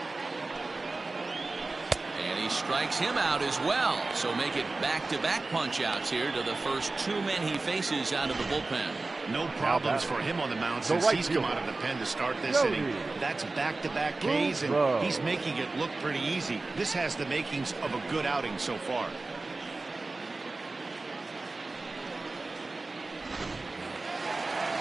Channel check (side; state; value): left; quieter; 3.4 dB